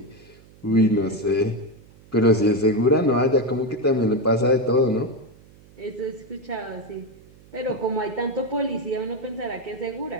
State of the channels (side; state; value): right; noise; hum, 25 dB below the sound